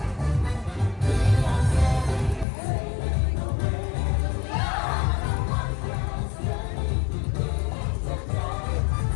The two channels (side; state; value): right; drops out; at 2.5 s